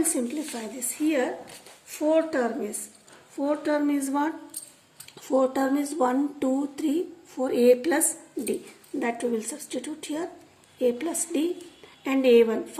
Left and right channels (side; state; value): both; identical; correlation 1.00